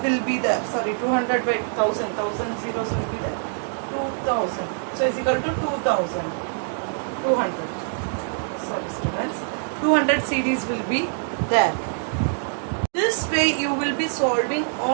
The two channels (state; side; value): silent; left; digital silence